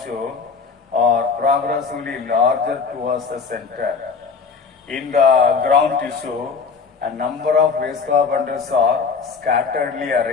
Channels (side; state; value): right; quieter; 5.3 dB